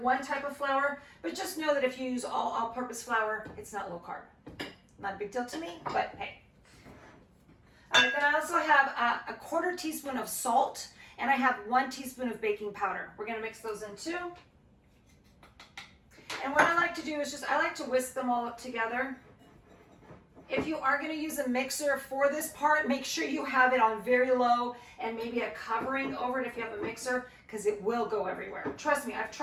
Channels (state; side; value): identical; both; correlation 1.00